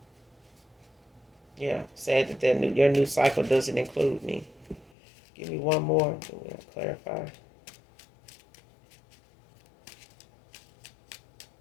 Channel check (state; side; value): drops out; right; at 4.9 s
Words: Yeah, sad that your new cycle doesn't include me. Give me one more. We'll clarify.